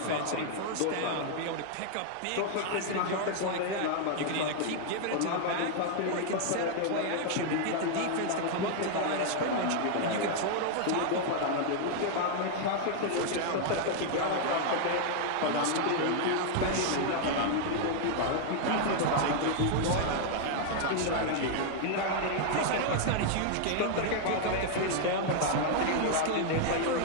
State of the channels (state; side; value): different; both; correlation 0.00